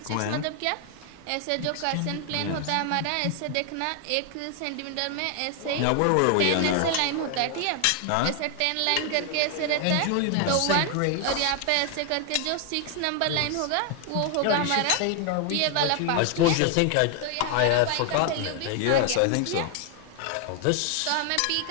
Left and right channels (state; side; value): different; both; correlation 0.00